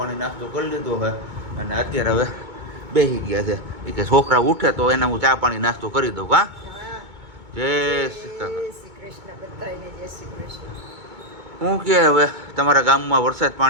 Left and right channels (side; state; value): left; late; 2.2 ms